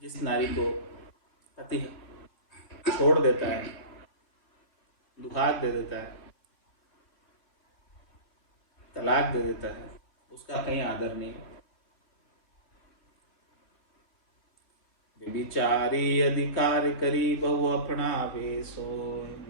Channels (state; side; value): late; right; 3.2 ms